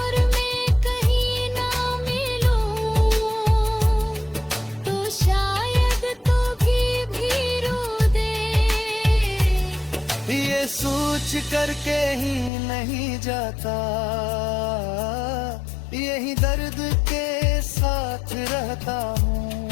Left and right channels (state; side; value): drops out; right; at 12.5 s